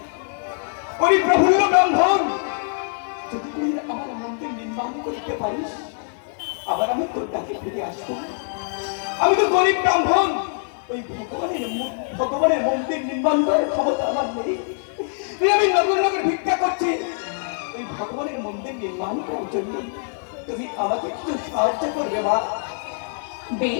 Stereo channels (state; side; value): silent; right; 55 dB below the other